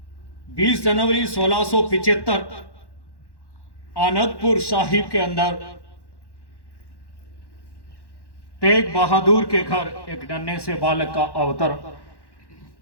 20 जनवरी 1675 आनंदपुर साहिब के अंदर तेग बहादुर के घर एक नन्हे से बालक का अवतर।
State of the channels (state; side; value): late; right; 1.1 ms